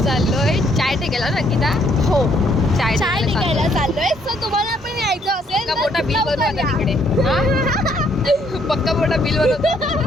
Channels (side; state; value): both; normal; correlation 0.68